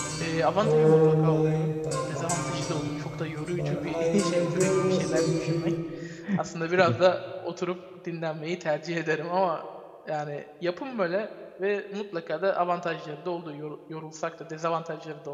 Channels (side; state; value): both; identical; correlation 1.00